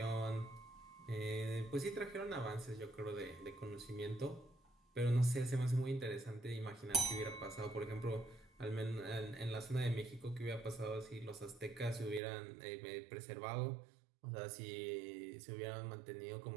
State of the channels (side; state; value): left; drops out; at 12.2 s